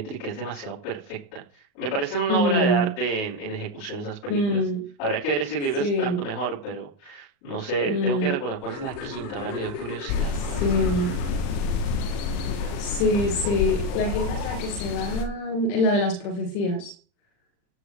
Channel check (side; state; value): right; late; 39 ms